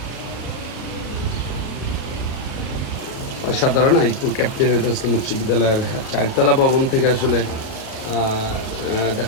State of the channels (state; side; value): late; right; 38 ms